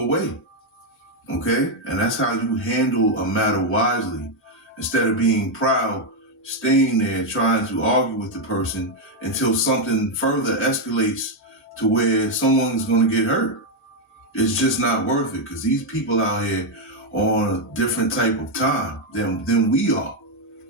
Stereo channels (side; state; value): both; normal; correlation 0.02